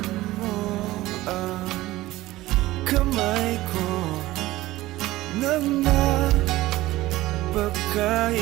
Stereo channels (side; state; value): left; quieter; 17.3 dB